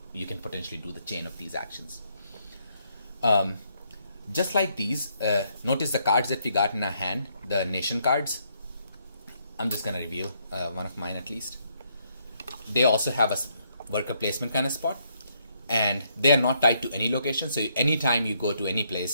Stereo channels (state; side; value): inverted; both; correlation -0.73